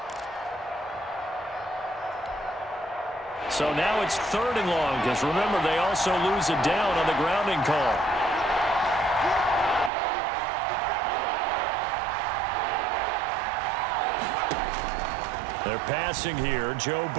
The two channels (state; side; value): drops out; left; at 9.9 s